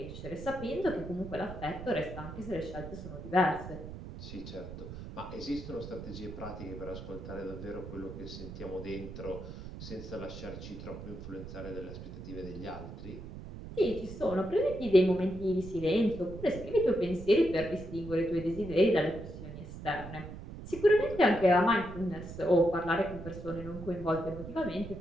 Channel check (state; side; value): noise; right; rumble, 11 dB below the sound